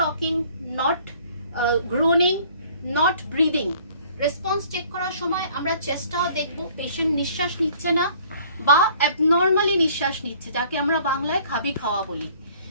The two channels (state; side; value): inverted; both; correlation -0.56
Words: talking, not groaning, not breathing. Response check করার সময় আমরা চেষ্টাও দেখব, পেশেন্ট নিঃশ্বাস নিচ্ছে না বা অ্যাবনর্মালি নিঃশ্বাস নিচ্ছে, যাকে আমরা বাংলায় খাবি খাওয়া বলি।